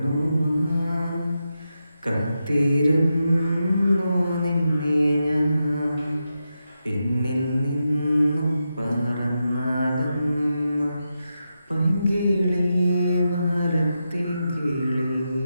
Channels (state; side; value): inverted; both; correlation -0.88